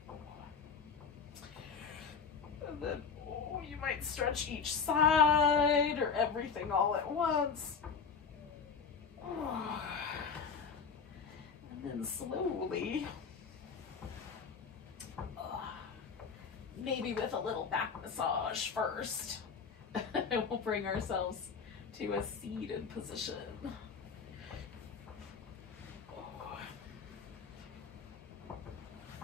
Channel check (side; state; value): right; quieter; 5.7 dB